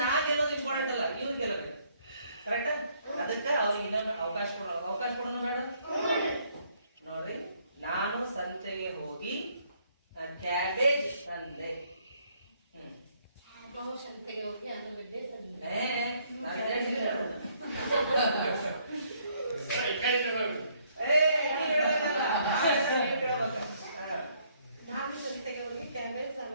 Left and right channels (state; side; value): inverted; both; correlation -0.67